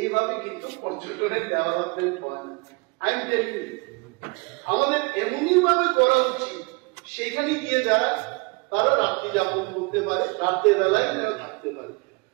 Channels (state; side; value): quieter; left; 29.1 dB